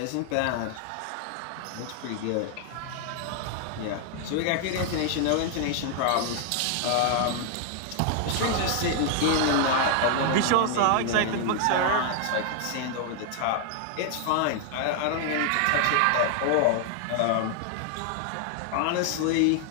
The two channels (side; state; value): both; different; correlation 0.00